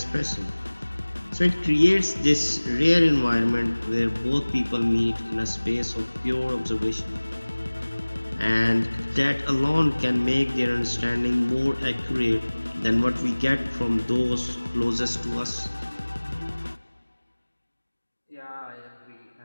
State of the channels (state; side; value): inverted; both; correlation -1.00